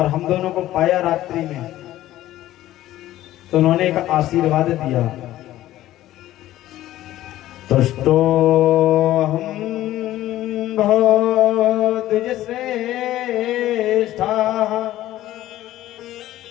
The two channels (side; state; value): right; quieter; 14.5 dB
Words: हम दोनों को पाया रात्रि में, तो उन्होंने एक आशीर्वाद दिया। तुष्टो हम द्विज श्रेष्ठा